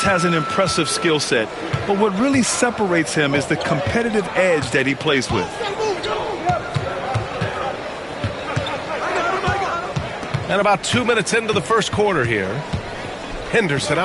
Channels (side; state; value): both; identical; correlation 1.00